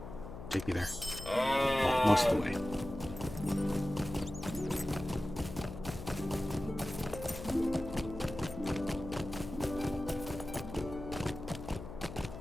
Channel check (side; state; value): left; noise; hum, 10 dB below the sound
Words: Take me there. Well, most of the way.